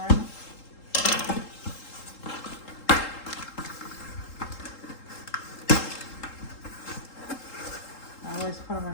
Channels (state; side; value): late; right; 3.8 ms